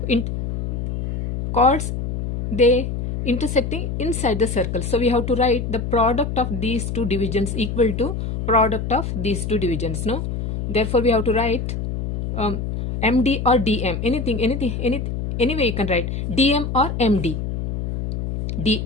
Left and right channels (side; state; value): left; noise; hum, 3 dB below the sound